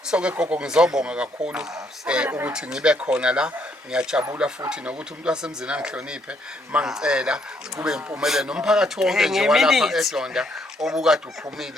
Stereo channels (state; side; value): normal; both; correlation 0.71